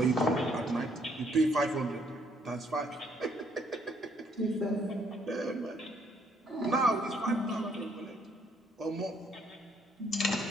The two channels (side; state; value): both; normal; correlation 0.68